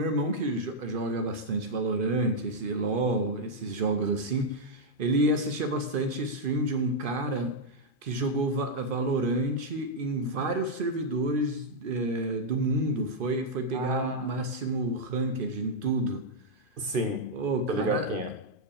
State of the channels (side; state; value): left; late; 2.5 ms